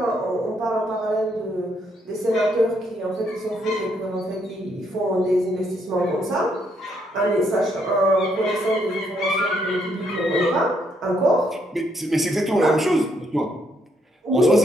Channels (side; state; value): both; normal; correlation 0.73